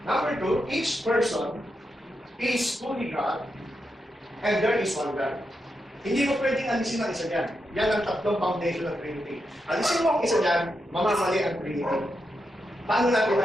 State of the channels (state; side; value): normal; both; correlation 0.85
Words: Number 2, each person is fully God. And there is one God. Hindi mo pwedeng alisin ang isa dyan. Yan ang tatlong foundation ng Trinity. Alisin mo ang isa dyan, mamamali ang Trinity. Paano natin